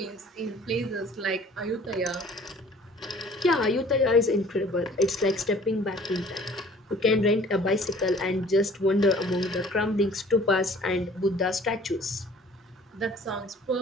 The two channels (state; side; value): normal; both; correlation 0.51